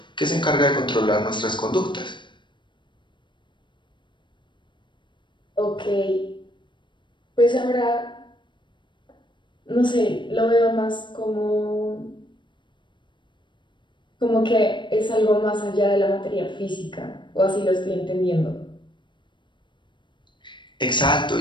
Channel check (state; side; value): late; right; 0.23 ms